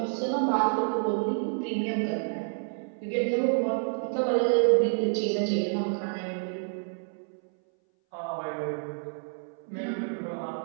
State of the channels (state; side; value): silent; left; 59 dB below the other